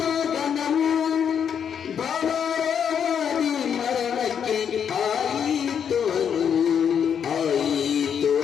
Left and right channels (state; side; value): quieter; right; 7.9 dB